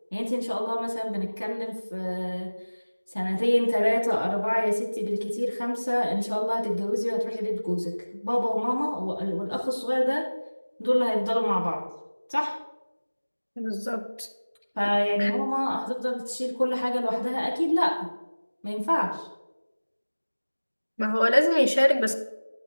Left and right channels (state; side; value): inverted; both; correlation -1.00